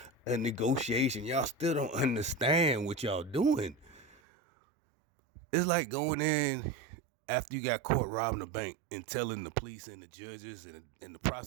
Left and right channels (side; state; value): left; drops out; at 4.2 s